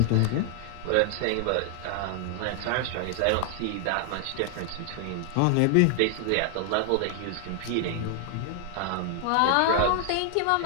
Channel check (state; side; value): different; both; correlation 0.00